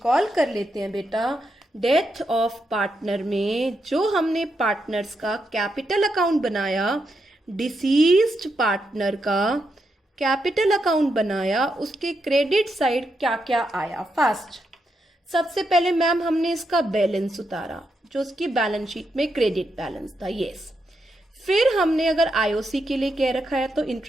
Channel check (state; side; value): normal; both; correlation 0.83